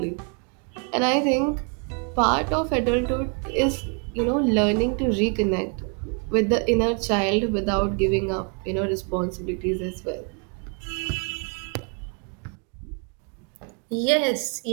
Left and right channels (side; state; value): left; quieter; 38.6 dB